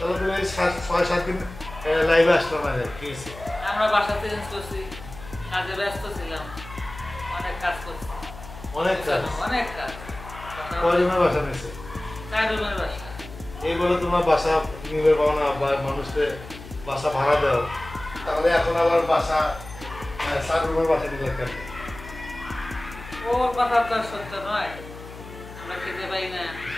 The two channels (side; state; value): left; noise; hum, 15 dB below the sound